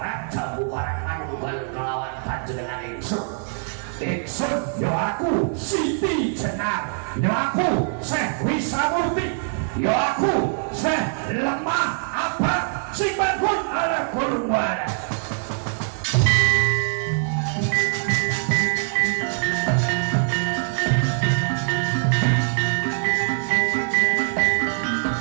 manunggal kelawan panjenengan ingsun ya aku Siti Jenar ya aku Syekh Wisamurti ya aku Syekh Lemah Abad sing bangun ala kurwana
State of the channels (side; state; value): left; silent; digital silence